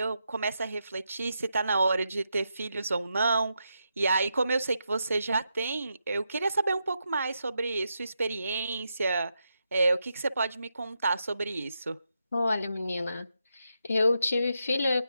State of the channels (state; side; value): inverted; both; correlation -0.84